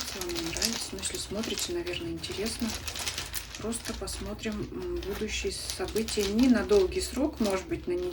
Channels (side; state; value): both; identical; correlation 1.00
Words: вам, не нравится. Но если смотрите, наверное, интересно. Просто посмотрим будущие события не на долгий срок, может быть, на